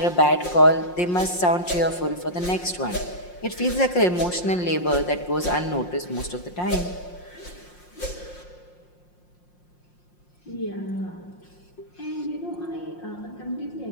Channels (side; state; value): right; late; 5.6 ms